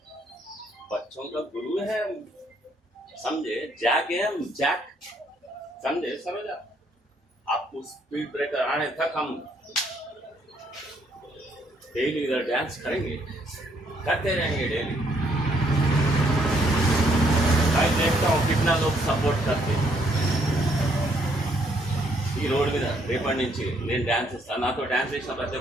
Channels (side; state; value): both; normal; correlation 0.70